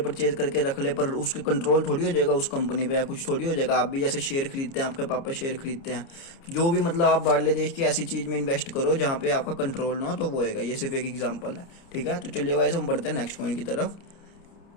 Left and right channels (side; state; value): right; late; 29 ms